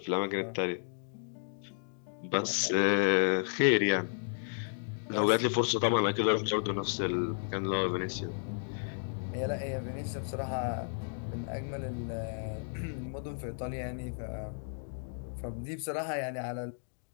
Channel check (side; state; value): right; silent; digital silence